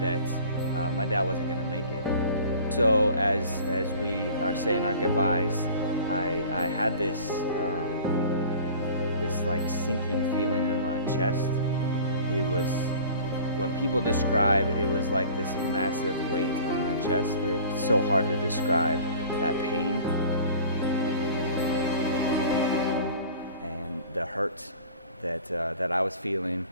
my dad wasn't going to make it. So as we are saying our goodbyes, I had this like sinking feeling in my chest. It was, when people describe, it was like this massive weight on my chest. It's so hard to describe that pain and the hurt that I was feeling.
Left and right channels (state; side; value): inverted; both; correlation -0.44